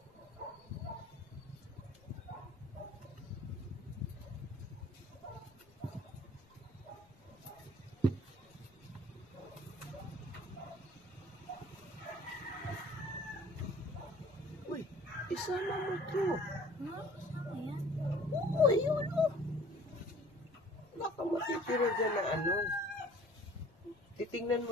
Isama mo ito. Ayan. Oo, ayun o. Baka matitira dyan na ano. Titingnan mo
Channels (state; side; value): noise; left; rumble, 27 dB below the sound